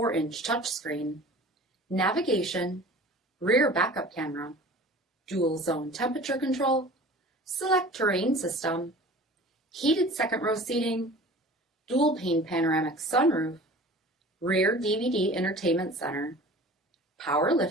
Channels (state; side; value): normal; both; correlation 0.42